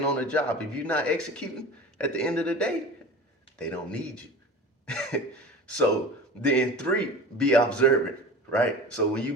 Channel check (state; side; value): normal; both; correlation 0.35